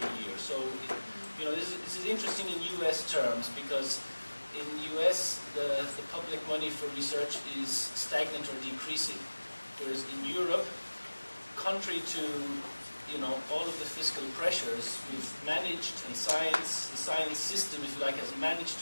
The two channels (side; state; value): both; inverted; correlation -1.00